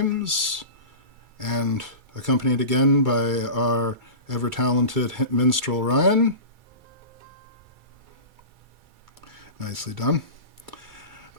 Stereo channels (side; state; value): left; late; 2.3 ms